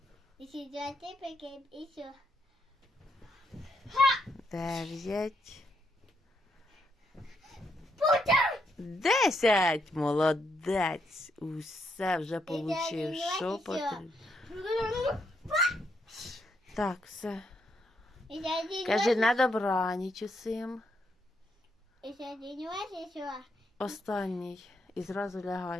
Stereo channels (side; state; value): both; normal; correlation 0.78